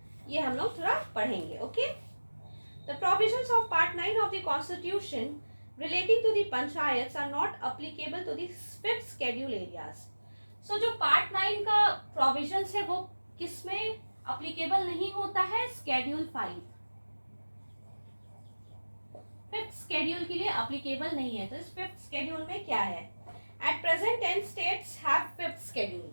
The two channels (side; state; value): both; inverted; correlation -1.00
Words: ये हम लोग थोड़ा पढ़ेंगे. Okay. The provisions of Part 9 of the Constitution relating to the panchayats are not applicable to the 5th schedule areas. So जो Part 9 का provisions है वो किसमें applicable नहीं होता है? Schedule 5. 5th schedule के लिए applicable नहीं है. तो इस 5th schedule में क्या है? At present 10 states have 5th schedule.